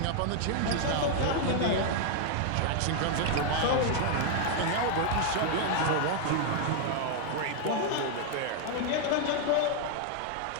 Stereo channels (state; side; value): different; both; correlation 0.00